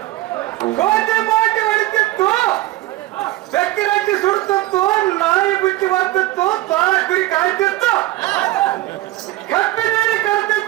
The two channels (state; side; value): quieter; left; 17.2 dB